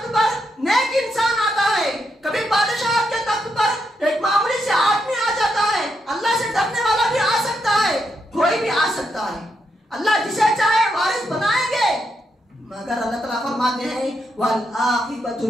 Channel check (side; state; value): both; normal; correlation 0.81